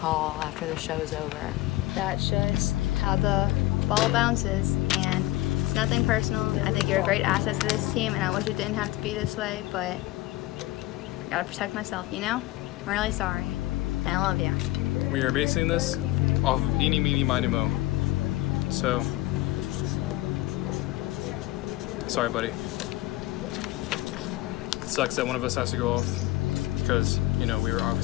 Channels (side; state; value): right; quieter; 17.8 dB